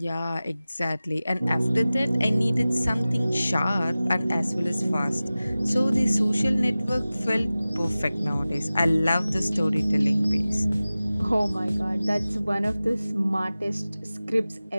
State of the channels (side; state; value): both; inverted; correlation -0.97